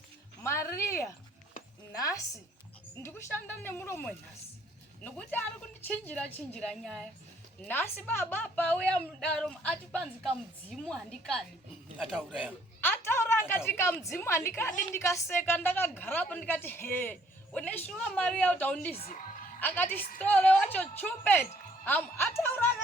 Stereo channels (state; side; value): normal; both; correlation 0.63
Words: Maria nhasi ndikushanda nemuromo nhasi. Nokuti ari kundichinjira nyaya. Nhasi baba pauya mudaro ati panzi kamudzimu handikadi. Ataura akati kamudzimu handikadi, ndikaseka ndakagarapo ndikati he uneshuwa Maria utaundizi. Akati stole wacho chupet ataura